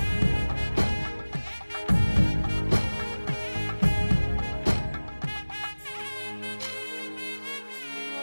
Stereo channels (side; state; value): both; inverted; correlation -1.00